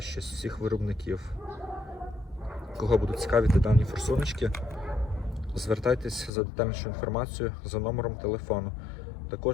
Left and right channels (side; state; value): right; drops out; at 6.3 s